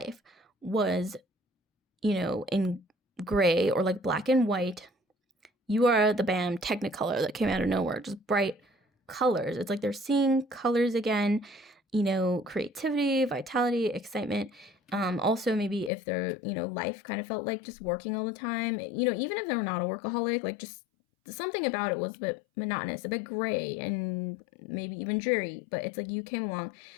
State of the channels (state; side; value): drops out; right; at 15.9 s